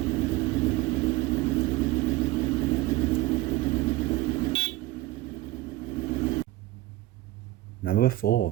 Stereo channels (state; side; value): quieter; left; 16.9 dB